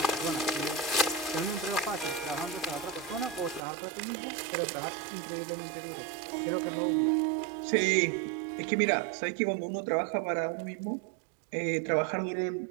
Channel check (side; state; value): left; drops out; at 3.6 s